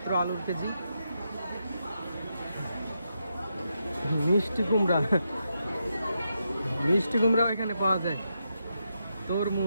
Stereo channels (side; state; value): both; inverted; correlation -0.84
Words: আলুর কেজি। মিষ্টি কুমড়াও এখানে পাওয়া যায়।